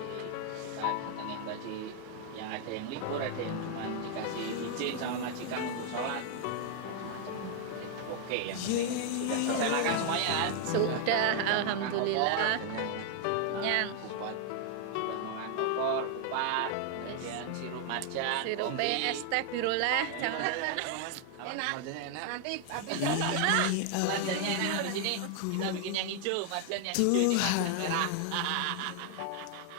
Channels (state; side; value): different; both; correlation 0.00